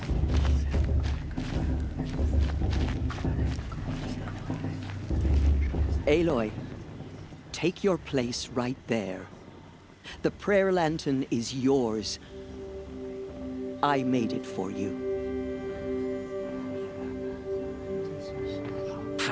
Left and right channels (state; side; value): identical; both; correlation 1.00